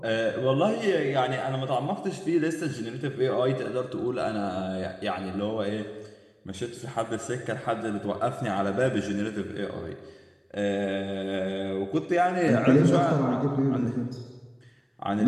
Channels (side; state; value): both; identical; correlation 1.00